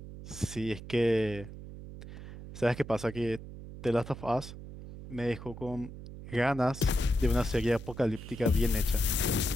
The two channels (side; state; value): right; noise; hum, 12 dB below the sound